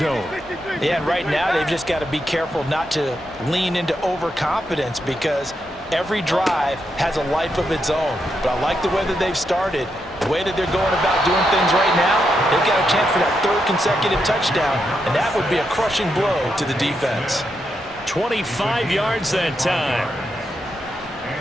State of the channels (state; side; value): normal; both; correlation 0.83